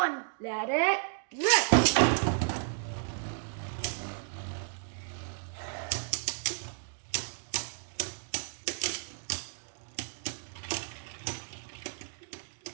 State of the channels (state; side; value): silent; left; digital silence